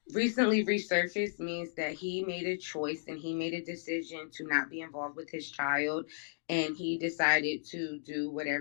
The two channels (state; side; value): silent; right; digital silence